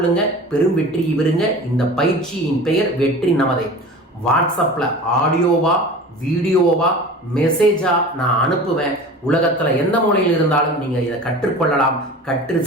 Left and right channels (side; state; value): both; normal; correlation 0.37